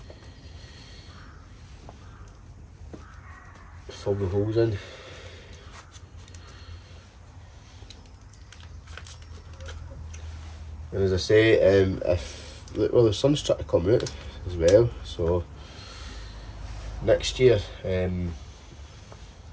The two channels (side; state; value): both; identical; correlation 1.00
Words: fill the holes in. And as I say, well, the sun's trying to come out as well, so next year,